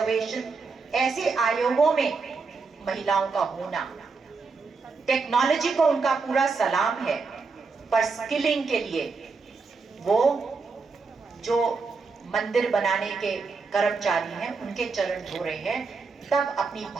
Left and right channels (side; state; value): left; quieter; 4.5 dB